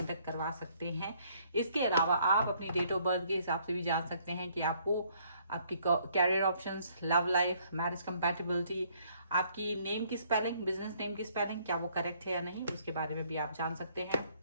तक करवा सकते हैं। इसके अलावा आप अपनी डेट ऑफ बर्थ के हिसाब से भी जान सकते हैं कि आपको आपकी career options, love life, marriage compatibility, आपकी नेम की स्पेलिंग, बिजनेस नेम की स्पेलिंग क्या वो करेक्ट है या नहीं, उसके बारे में भी आप जान सकते हैं।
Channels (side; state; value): both; inverted; correlation -0.65